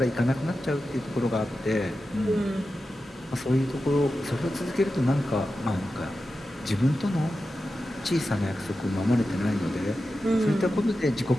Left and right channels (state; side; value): normal; both; correlation 0.92